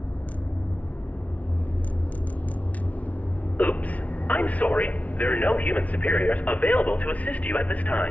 Oops. I'm sorry. There are no human superiors available to assist you at this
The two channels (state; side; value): late; right; 0.068 ms